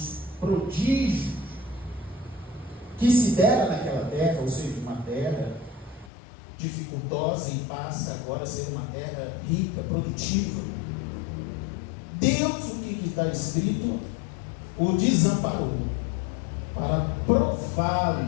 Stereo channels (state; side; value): drops out; right; at 6.1 s